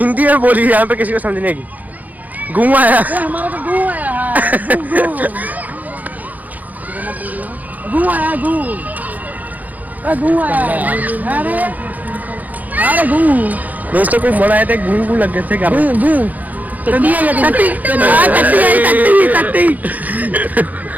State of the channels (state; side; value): late; left; 0.080 ms